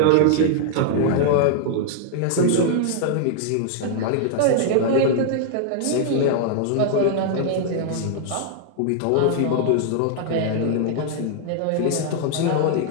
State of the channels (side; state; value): both; different; correlation -0.01